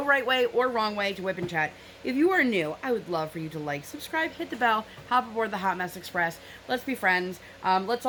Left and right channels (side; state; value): both; identical; correlation 1.00